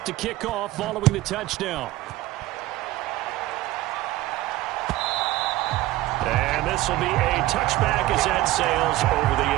to kick off following the touchdown. And this will be a touchback as that sails over the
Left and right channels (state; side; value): quieter; left; 16.8 dB